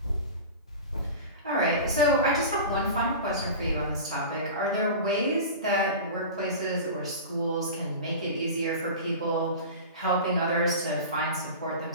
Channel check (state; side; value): inverted; both; correlation -0.32